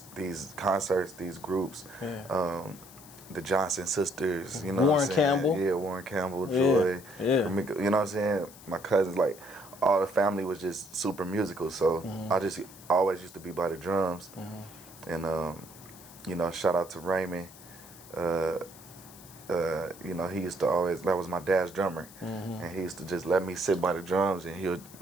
these concerts, these groups. The Johnson sisters, you know Warren what I'm saying? Campbell. Yeah, Warren Campbell, Joy, Yeah. Ramika, you know what I'm saying? My cousins, like, all the family was just super musical, so I always used to be by the drums. And, shout out to Raymond. He used to always, that was my dad's drummer, and he used to just let me sit by the drums, and he would,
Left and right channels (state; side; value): noise; left; hiss, 19 dB below the sound